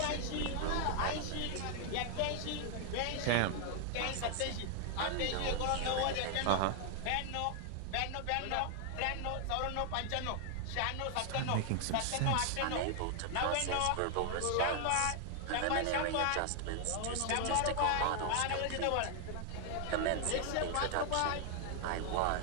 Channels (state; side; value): different; both; correlation 0.00